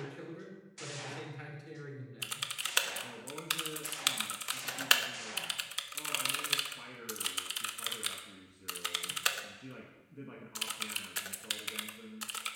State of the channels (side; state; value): both; identical; correlation 1.00